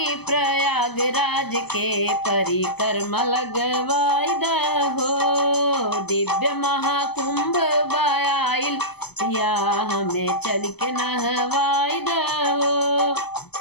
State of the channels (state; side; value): late; right; 0.98 ms